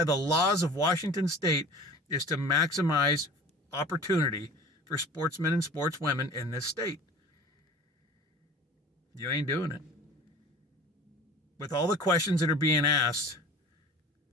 the laws of Washington State, is to maximize opportunity for sportsmen and sportswomen in this state. You ain't doing it. With all the questions that are being asked,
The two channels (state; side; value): normal; both; correlation 0.41